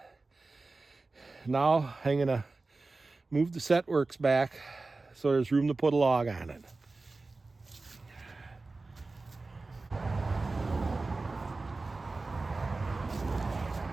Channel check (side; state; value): left; quieter; 3.5 dB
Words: Now I'm gonna move the set works back so there's room to put a log on it.